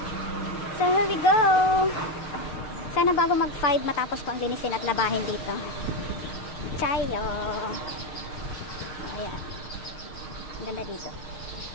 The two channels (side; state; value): right; late; 6.5 ms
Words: So here we go. Sana bago mag 5 matapos ko ang linisin at labahin dito. Chayo. Ayan. Ang ganda dito.